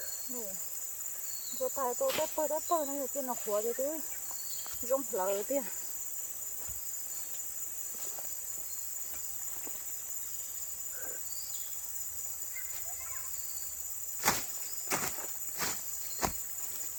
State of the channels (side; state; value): both; identical; correlation 1.00